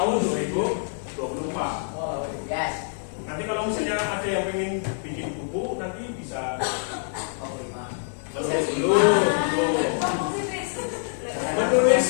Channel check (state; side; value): silent; right; 61 dB below the other